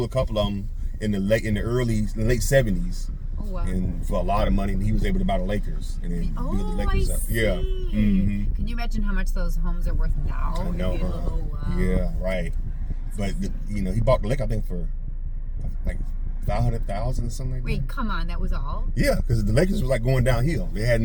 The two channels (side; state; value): both; identical; correlation 1.00